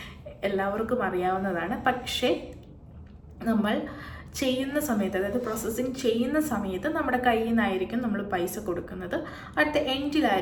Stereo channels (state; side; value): identical; both; correlation 1.00